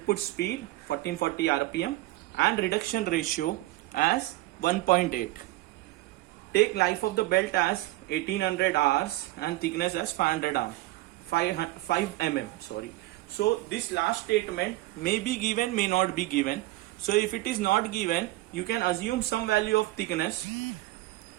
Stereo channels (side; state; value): left; quieter; 18.2 dB